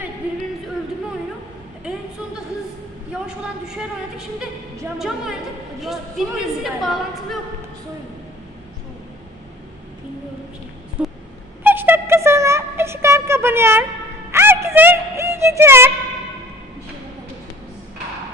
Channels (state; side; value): normal; both; correlation 0.47